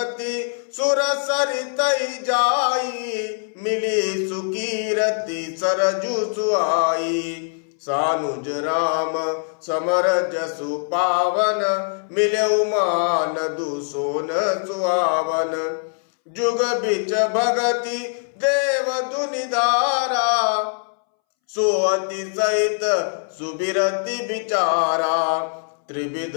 सुर सरितई जाई मिली सुकीरति सरजु सुहाई। सानुज राम समर जसु पावन मिले मान दुसोन सुहावन। जुग बिच भगति देव दुनिधारा सोअति सहित सुबिरति विचारा। त्रिविध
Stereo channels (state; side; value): silent; right; 64 dB below the other